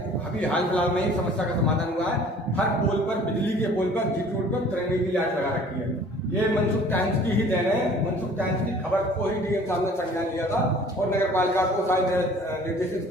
अभी हाल फिलहाल में ही समस्या का समाधान हुआ है। हर पोल पर, बिजली के पोल पर, जीट रोड पर तिरंगे की लाइट लगा रखी है। ये मनसुख टाइम्स की ही देन है। मनसुख टाइम्स की खबर को ही डीएम साहब ने संज्ञान लिया था और नगर पालिका को शायद निर्देशित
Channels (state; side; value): normal; both; correlation 0.50